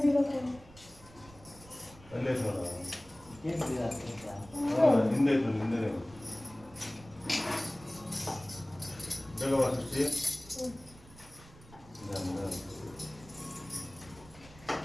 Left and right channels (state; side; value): noise; right; rumble, 22 dB below the sound